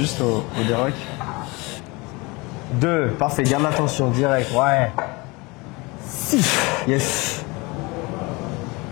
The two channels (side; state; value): right; quieter; 25.5 dB